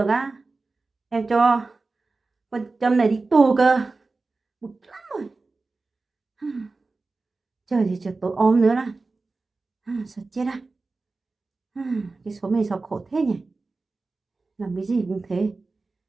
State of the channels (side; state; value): left; quieter; 3.7 dB